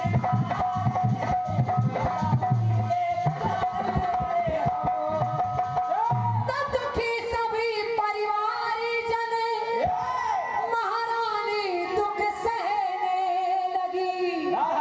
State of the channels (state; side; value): identical; both; correlation 1.00